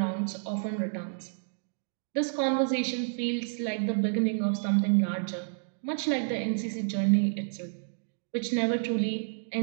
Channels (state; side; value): silent; left; digital silence